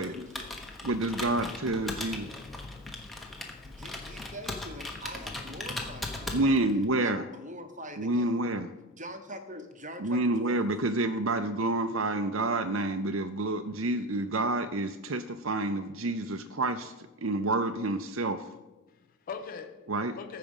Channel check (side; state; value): both; normal; correlation 0.23